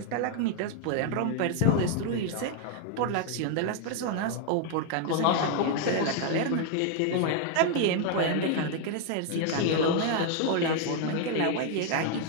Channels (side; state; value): both; different; correlation 0.00